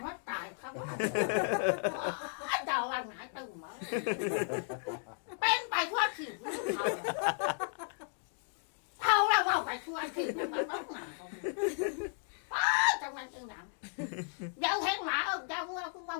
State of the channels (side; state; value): right; silent; 55 dB below the other